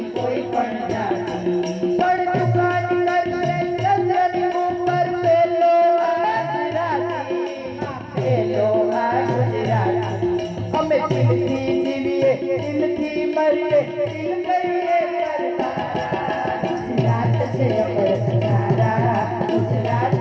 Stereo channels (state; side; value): identical; both; correlation 1.00